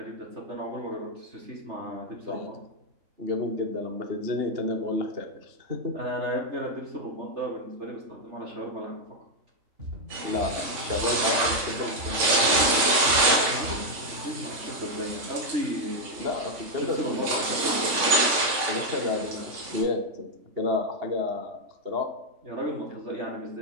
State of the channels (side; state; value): left; late; 3.5 ms